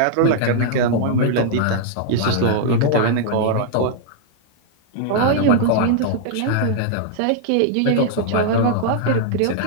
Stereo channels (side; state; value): both; different; correlation -0.01